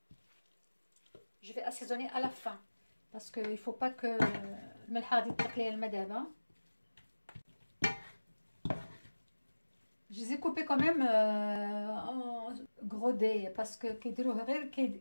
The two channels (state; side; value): inverted; both; correlation -1.00